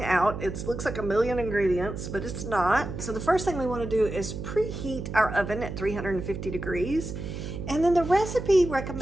out. It looks like a million ingredients, but it's not. So the first thing we want to do is preheat our oven at 350 degrees. And then the recipe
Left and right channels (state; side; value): noise; right; hum, 7 dB below the sound